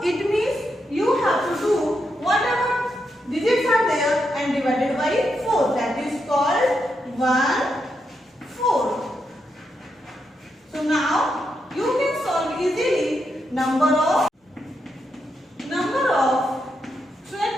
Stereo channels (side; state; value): both; normal; correlation 0.83